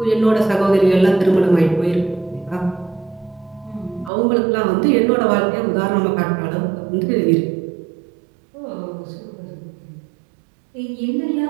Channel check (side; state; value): left; drops out; at 4.1 s